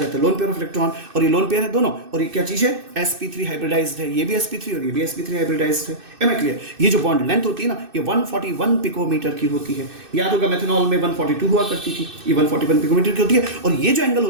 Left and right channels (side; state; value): left; late; 2.6 ms